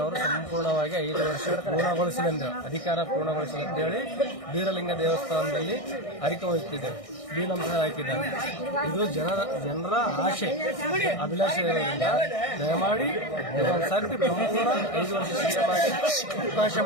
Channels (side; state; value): right; late; 1.6 ms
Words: ಸಂಪೂರ್ಣವಾಗಿ 5 ವರ್ಷ ಪೂರ್ಣಗೊಳಿಸಲೆಂದು ಅಧಿಕಾರ ಪೂರ್ಣಗೊಳಿಸಲಿ ಅಂತ ಹೇಳಿ ಬೀರಲಿಂಗ ದೇವಸ್ಥಾನದಲ್ಲಿ ಅರಿಕೆ ಹೊಯ್ತಿದ್ದೇವೆ. ನಮಸ್ಕಾರ ಹಾಕಿದ್ದಾರೆ. ಇದು ಜನರ ಆಶೆ ಅಭಿಲಾಷೆ ಇರೋದ್ರಿಂದ ದಯಮಾಡಿ ಇದೊಂದು ಸರ್ತಿ ಸಂಪೂರ್ಣ 5 ವರ್ಷ ಸಿಎಂ ಆಗಿ ಅವಕಾಶ